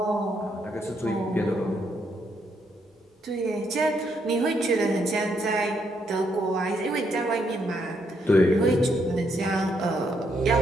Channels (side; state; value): both; normal; correlation 0.75